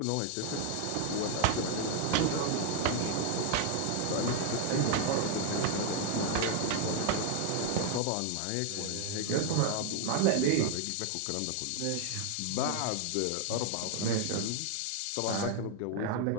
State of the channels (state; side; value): different; both; correlation 0.00